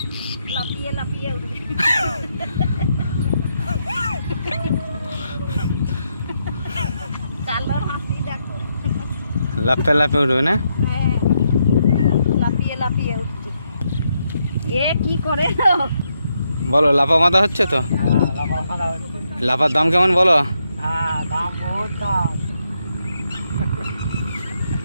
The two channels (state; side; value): inverted; both; correlation -0.80